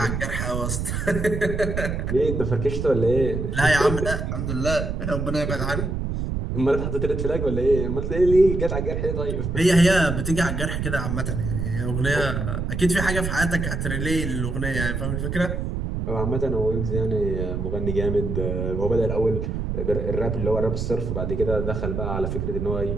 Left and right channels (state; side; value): noise; right; rumble, 2 dB below the sound